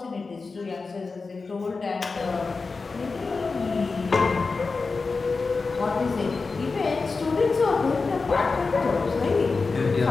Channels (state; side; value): quieter; right; 4.2 dB